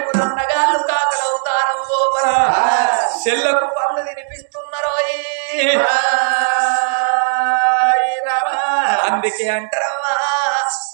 అన్నగాళ్ళు కాకల అవతారం లోపల చెల్లకు పండ్లు తినిపిస్తున్నారు. అందుకే అంటారమ్మా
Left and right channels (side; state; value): left; silent; digital silence